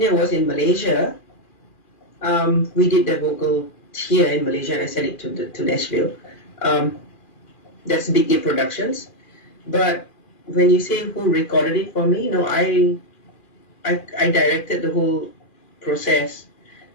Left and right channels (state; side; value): late; right; 2.4 ms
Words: was in Malaysia. We did the vocal here in Malaysia and I sent it to Nashville. That's Big A Productions. But when you say who recorded it for me, no, I directed the whole process.